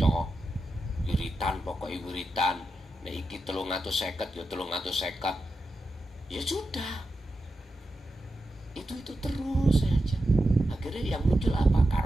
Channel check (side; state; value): both; normal; correlation 0.89